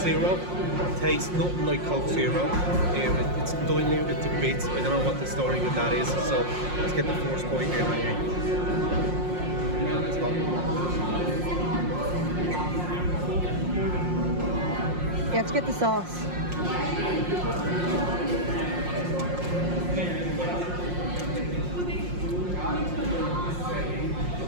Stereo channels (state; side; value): late; left; 5.6 ms